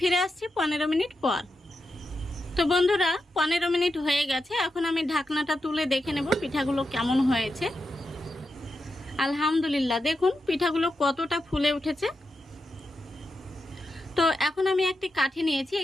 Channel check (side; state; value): both; normal; correlation 0.88